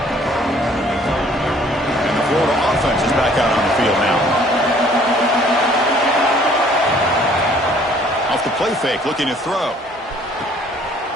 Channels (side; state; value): both; normal; correlation 0.58